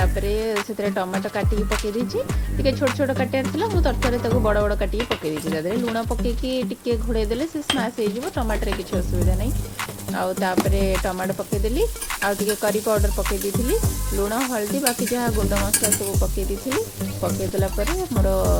से टमाटो काटिकी पकई टे छोट छोट काटार मुझे तरतर बड़ बड़ काटिकी पकई देती लुण पकईकी घोड़े देले से स्माश हो टमाटर किसी असुविधा नहीं आउे टमाटो पकईदेली आउे करी पाउडर पकई दी लुण हल्दी बाकी जहाँ गुंड मसला सब पकई दी पकईदेला मोर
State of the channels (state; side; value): identical; both; correlation 1.00